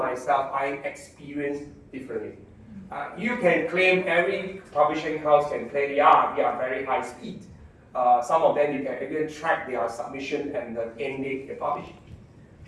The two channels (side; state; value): both; identical; correlation 1.00